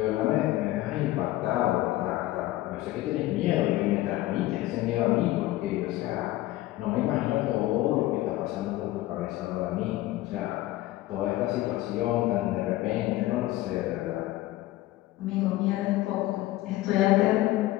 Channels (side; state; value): right; quieter; 16.5 dB